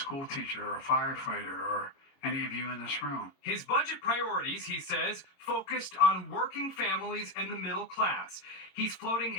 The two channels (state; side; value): late; right; 22 ms